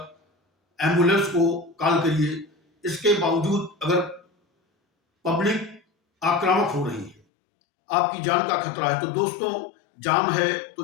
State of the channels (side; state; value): right; drops out; at 7.2 s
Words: एम्बुलेंस को कॉल करिए। इसके बावजूद अगर पब्लिक आक्रामक हो रही है, आपकी जान का खतरा है, तो दोस्तों, जान है